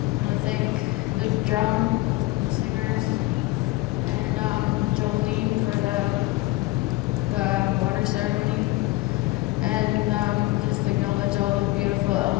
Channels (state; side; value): quieter; right; 20.2 dB